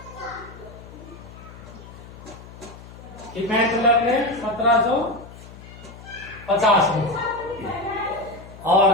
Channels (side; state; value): left; noise; hum, 17 dB below the sound